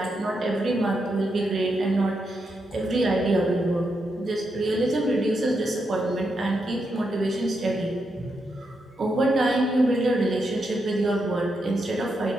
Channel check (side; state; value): both; normal; correlation 0.83